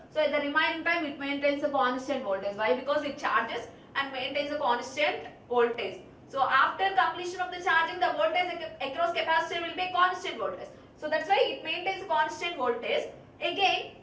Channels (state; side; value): identical; both; correlation 1.00